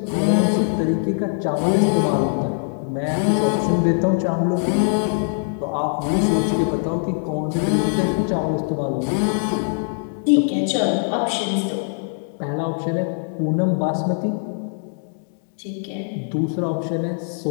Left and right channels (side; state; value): right; silent; 64 dB below the other